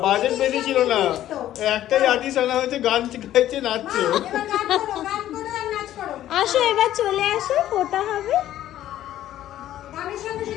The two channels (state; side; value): quieter; right; 12.7 dB